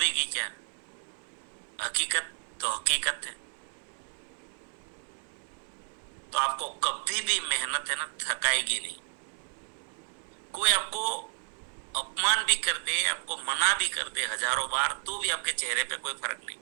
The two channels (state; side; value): silent; left; 57 dB below the other